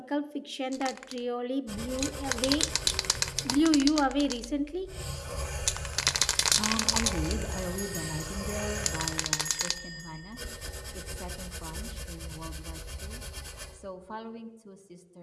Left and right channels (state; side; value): identical; both; correlation 1.00